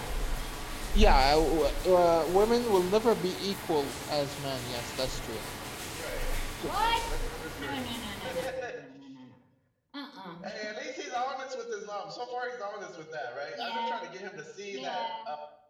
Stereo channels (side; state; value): both; identical; correlation 1.00